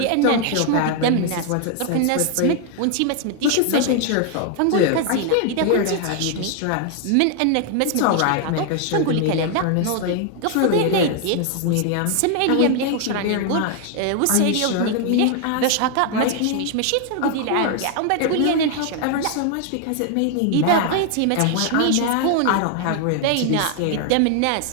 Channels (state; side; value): different; both; correlation 0.00